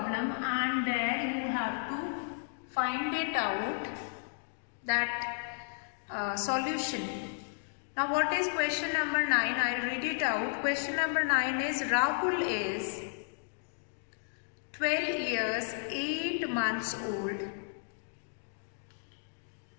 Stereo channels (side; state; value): right; silent; digital silence